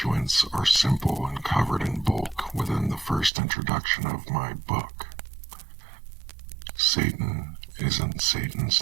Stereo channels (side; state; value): left; drops out; at 3.3 s